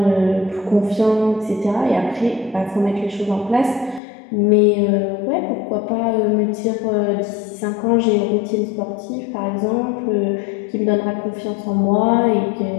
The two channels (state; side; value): drops out; right; at 4.0 s